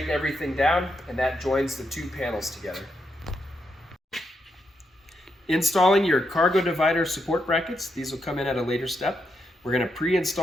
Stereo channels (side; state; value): both; normal; correlation 0.82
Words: everything down and that joins the two panels together. Installing your cargo divider support brackets. These will come in at a later step. We're going to